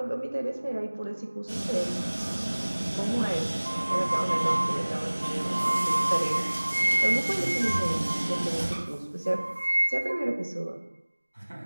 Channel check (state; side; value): inverted; both; correlation -1.00